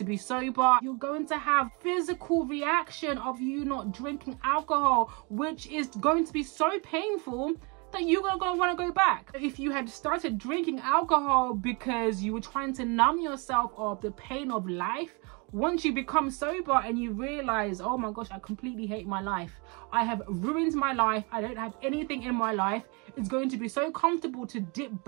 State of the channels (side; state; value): left; quieter; 31.1 dB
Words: be sober. You're going to have physical reaction of you not drinking alcohol, which is going to be so painful that you're gonna want to go back. If you had started drinking alcohol because you were trying to numb yourself of the pain of life, once you become sober and you realize, oh my gosh, I completely hate my life, I have ruined my life, I don't have anything in my life, it's going to be so comfortable to dip